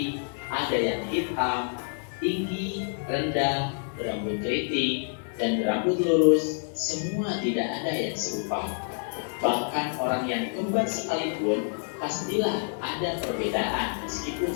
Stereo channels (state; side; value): silent; right; 59 dB below the other